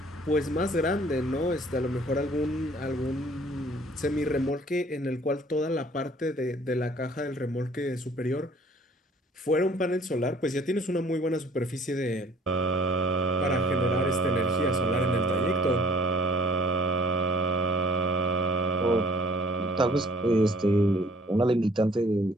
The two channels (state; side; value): normal; both; correlation 0.56